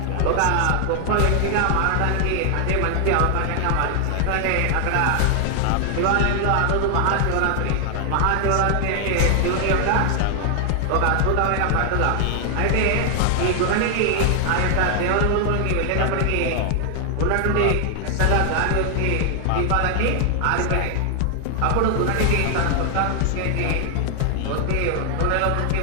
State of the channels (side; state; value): both; different; correlation 0.00